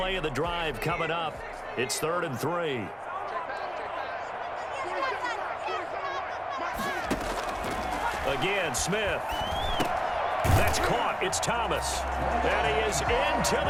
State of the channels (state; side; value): identical; both; correlation 1.00